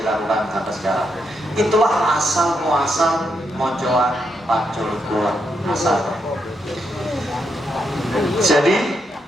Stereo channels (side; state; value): both; normal; correlation 0.81